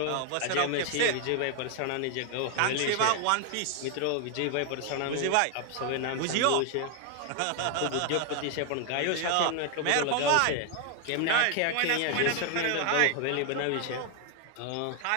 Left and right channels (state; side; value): different; both; correlation 0.00